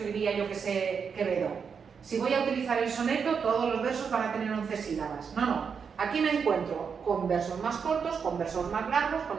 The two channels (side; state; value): left; quieter; 6.3 dB